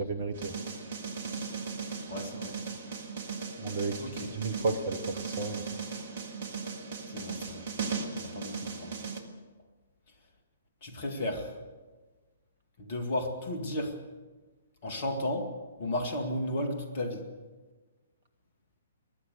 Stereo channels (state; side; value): inverted; both; correlation -0.58